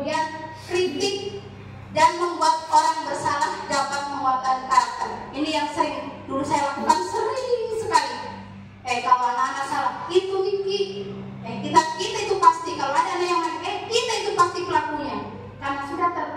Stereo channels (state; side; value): identical; both; correlation 1.00